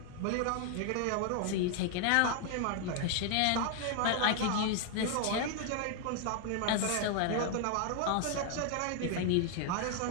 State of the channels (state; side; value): different; both; correlation 0.00